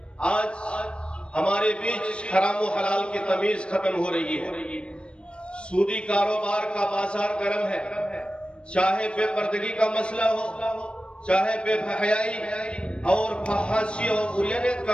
آج ہمارے بیچ حرام و حلال کی تمیز ختم ہو رہی ہے. سودی کاروبار کا بازار گرم ہے. چاہے بے پردگی کا مسئلہ ہو، چاہے بے حیائی اور فحاشی اور عریانیت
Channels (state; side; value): late; right; 0.057 ms